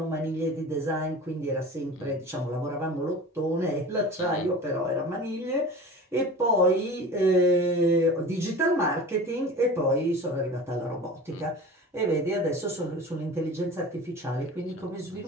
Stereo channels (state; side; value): normal; both; correlation 0.36